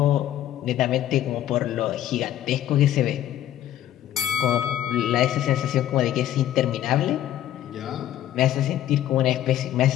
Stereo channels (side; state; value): right; quieter; 12.2 dB